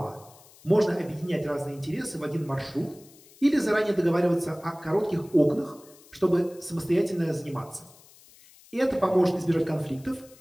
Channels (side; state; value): left; noise; hiss, 25 dB below the sound